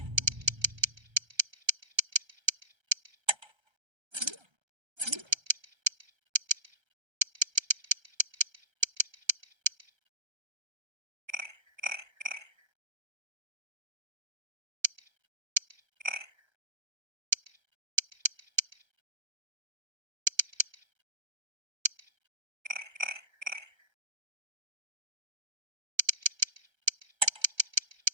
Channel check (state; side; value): late; left; 1.3 ms